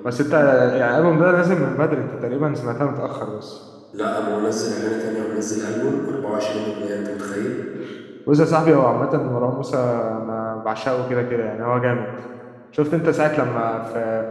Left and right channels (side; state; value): both; identical; correlation 1.00